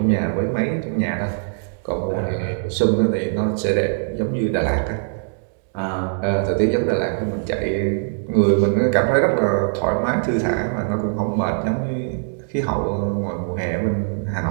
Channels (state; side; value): silent; left; digital silence